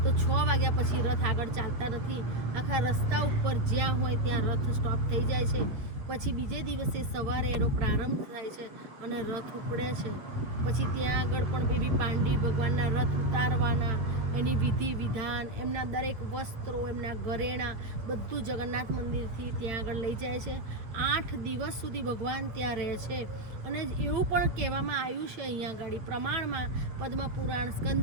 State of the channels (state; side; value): late; left; 8.8 ms